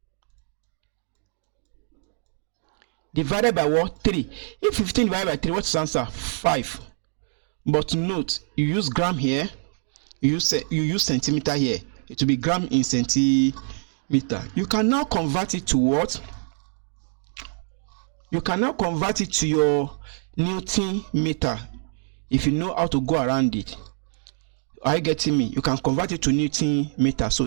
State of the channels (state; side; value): silent; left; digital silence